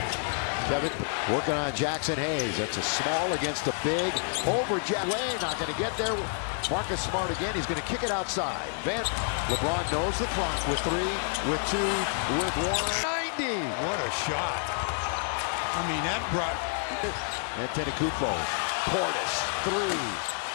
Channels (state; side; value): silent; right; 59 dB below the other